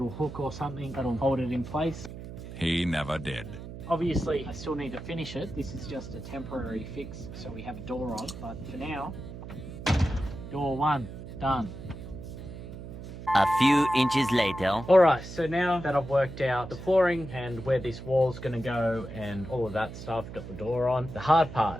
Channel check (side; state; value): right; noise; hum, 11 dB below the sound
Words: hook or something that'll hold it in place. He never did. Obviously, I still need to finish it. This is just a temporary fix, so we have a door on. But for now, door one, done. A few inches later. Alright, so now that I've worked out the flooring and where this wall's going to go and all of that stuff, got the door on, the hard